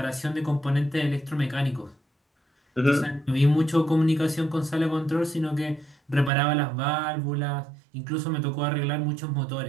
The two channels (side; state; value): left; drops out; at 6.3 s